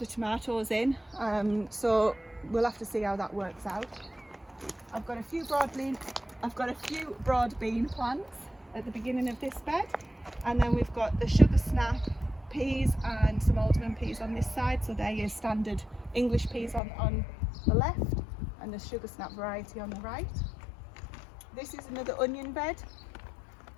tomatoes in. So we'll have to see how that works out. I've got a few broad bean plants at the beginning of this bed, and then we've got the sugar snap peas and some alderman peas on this side. So they're your standard English peas on the left, and the sugar snap variety on the right. This is another onion bed.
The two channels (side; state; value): right; drops out; at 16.8 s